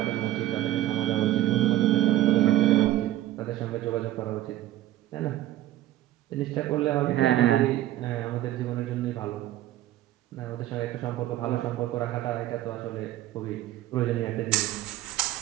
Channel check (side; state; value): left; quieter; 14.0 dB